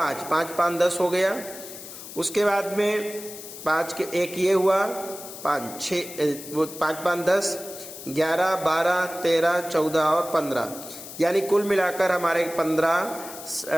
5 5 10 हो गया। उसके बाद में 5 के एक ये हुआ, 5 6 वो 5 5 10 11 12 13 14 और 15, यानी कुल मिलाकर हमारे 15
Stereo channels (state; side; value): noise; left; hiss, 13 dB below the sound